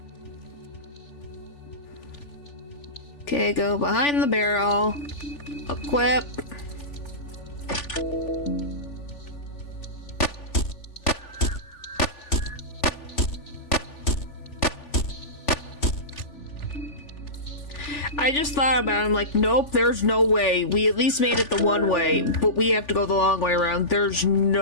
Okay, go behind the barrel. Equip. I just thought about it. I'm like, nope, there's no way. We at least made it the one way, but we have to go the long way around. There's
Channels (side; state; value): right; late; 3.4 ms